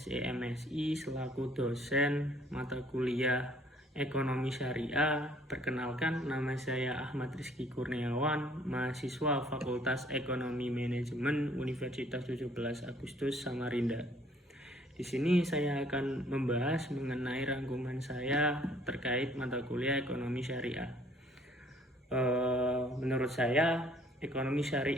selaku dosen mata kuliah Ekonomi Syariah, perkenalkan nama saya Ahmad Rizky Kurniawan, mahasiswa Fakultas Ekonomi Manajemen Universitas 17 Agustus Samarinda. Di sini saya akan membahas mengenai rangkuman saya terkait mata kuliah Ekonomi Syariah. Menurut saya, ekonomi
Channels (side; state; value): both; normal; correlation 0.59